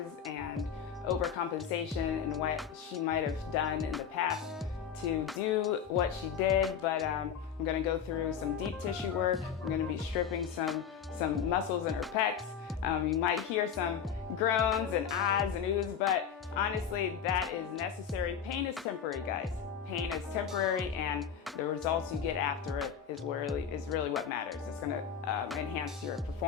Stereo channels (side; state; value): right; quieter; 7.7 dB